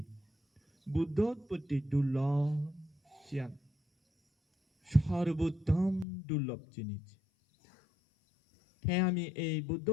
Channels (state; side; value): drops out; right; at 6.1 s